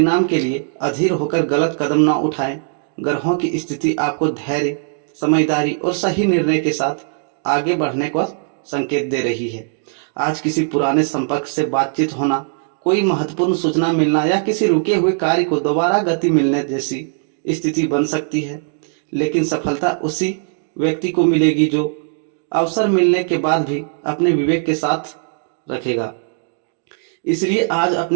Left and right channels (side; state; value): left; silent; digital silence